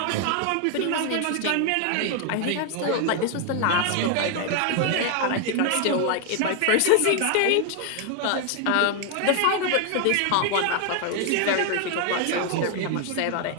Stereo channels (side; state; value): both; different; correlation 0.00